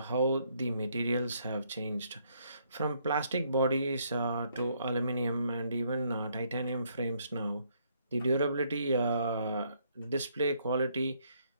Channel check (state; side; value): inverted; both; correlation -0.70